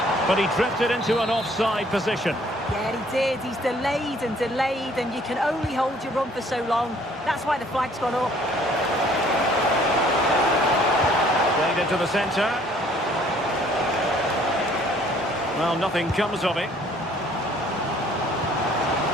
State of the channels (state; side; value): normal; both; correlation 0.59